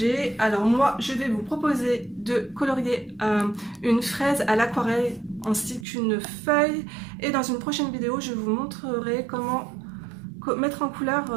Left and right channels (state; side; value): drops out; left; at 5.9 s